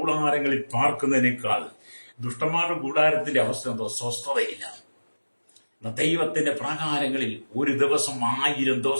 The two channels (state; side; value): inverted; both; correlation -1.00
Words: പാർക്കുന്നതിനേക്കാൾ, ദുഷ്ടന്മാരുടെ കൂടാരത്തിന്റെ അവസ്ഥ എന്തോ? സ്വസ്ഥതയില്ല. ദൈവത്തിന്റെ പ്രാകാരങ്ങളിൽ ഒരു ദിവസം 1000